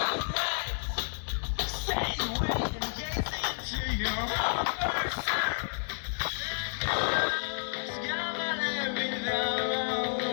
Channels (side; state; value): right; silent; digital silence